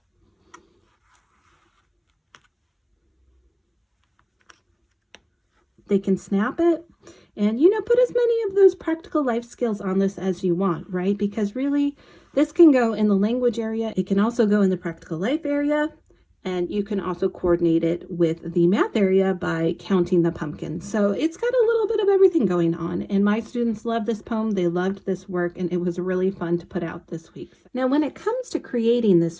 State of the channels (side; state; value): both; identical; correlation 1.00